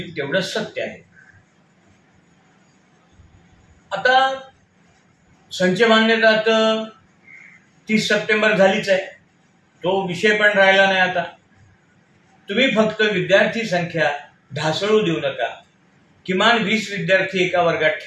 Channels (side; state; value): both; identical; correlation 1.00